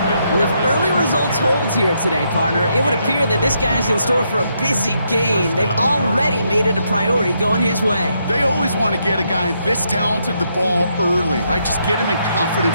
Well, if early results hold here today, partner, it would appear that this guy's in store for a busy game. They've already made it a priority going his way. They always want to get a guy this talented the ball early, right? Just get him in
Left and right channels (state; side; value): inverted; both; correlation -0.77